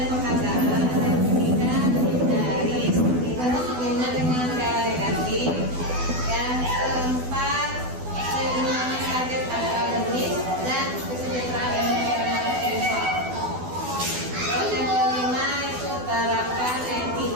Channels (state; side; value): late; left; 12 ms